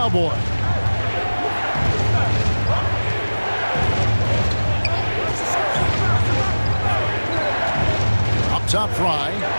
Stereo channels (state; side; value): inverted; both; correlation -1.00